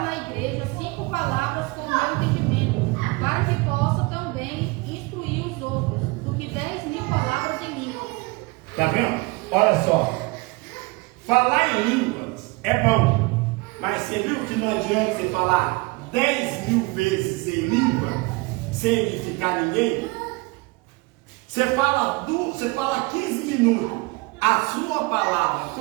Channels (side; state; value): left; quieter; 25.2 dB